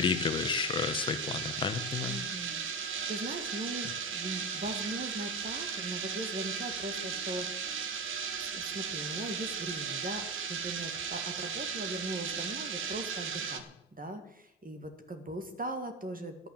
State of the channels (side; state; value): both; normal; correlation 0.18